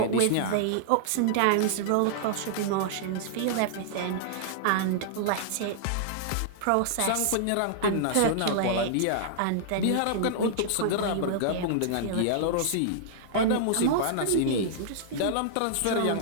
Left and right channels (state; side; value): different; both; correlation -0.01